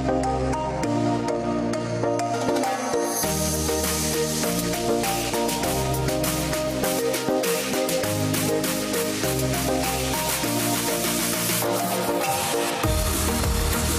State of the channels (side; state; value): both; identical; correlation 1.00